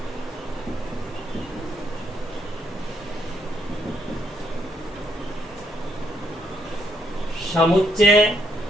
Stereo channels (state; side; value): normal; both; correlation 0.74